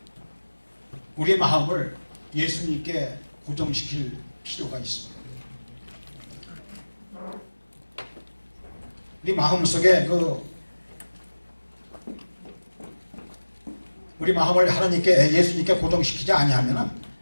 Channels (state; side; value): inverted; both; correlation -1.00